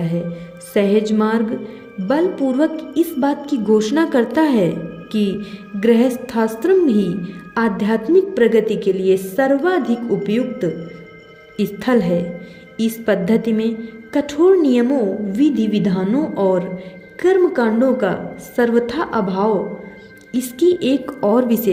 है। सहज मार्ग बलपूर्वक इस बात की घोषणा करता है कि गृहस्थाश्रम ही आध्यात्मिक प्रगति के लिए सर्वाधिक उपयुक्त स्थल है। इस पद्धति में कठोर नियमों, विधि विधानों और कर्मकांडों का सर्वथा अभाव इसकी एक और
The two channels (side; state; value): both; identical; correlation 1.00